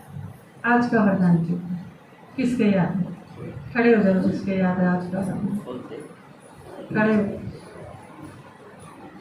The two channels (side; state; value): both; identical; correlation 1.00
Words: आज का वरदान क्या था, किसके याद है? खड़े हो जाओ जिसके याद है आज का वरदान, खड़े हो।